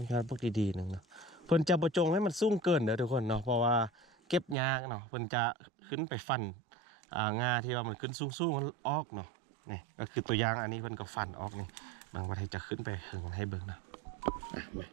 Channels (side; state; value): left; drops out; at 4.5 s